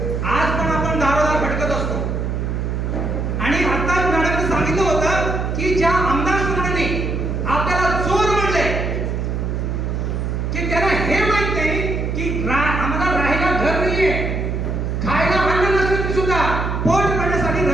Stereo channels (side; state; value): right; noise; hum, 1 dB below the sound